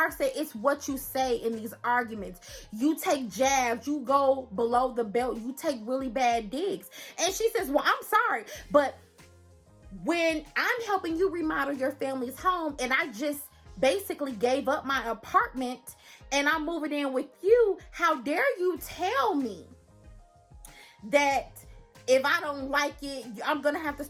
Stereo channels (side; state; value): both; identical; correlation 1.00